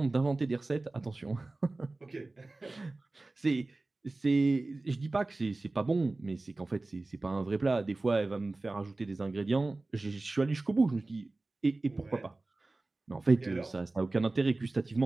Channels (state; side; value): quieter; left; 3.1 dB